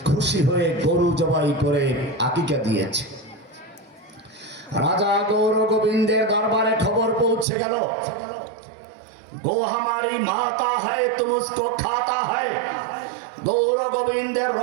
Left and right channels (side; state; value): left; drops out; at 7.5 s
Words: খুশি হয়ে গরু জবাই করে আকিকা দিয়েছে। রাজা গৌর গোবিন্দের দরবারে খবর পৌঁছে গেল, গো হামারি মাতা হ্যায় তুম উসকো খাতা হ্যায়। গৌর গোবিন্দের